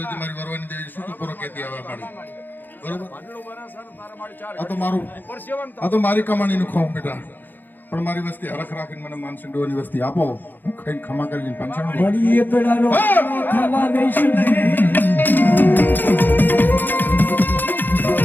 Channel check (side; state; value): right; late; 0.092 ms